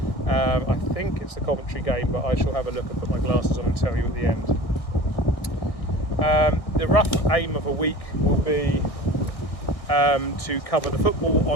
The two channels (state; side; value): late; right; 1.6 ms